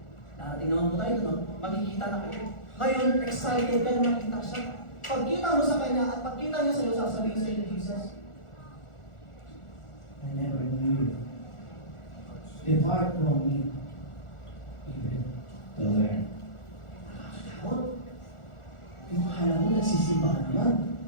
Darating naman po tayo, no? Magkikita na kayo. Ngayon, excited ka na makita siya. Pagkita mo sa kanya at pagkita niya sa'yo, sasabihin sa'yo ni Jesus, I never knew you. Depart from me. Even to learn. Nakakatakot. Yung akala mo, nagsisimba ka naman.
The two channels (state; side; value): late; right; 1.4 ms